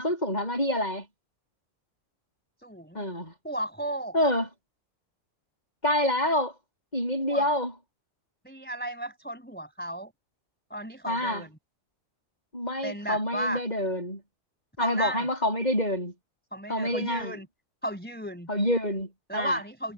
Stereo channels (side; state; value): right; late; 2.1 ms